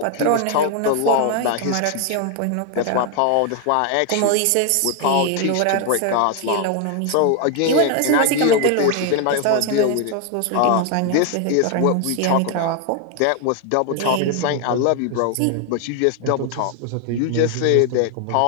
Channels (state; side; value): different; both; correlation 0.00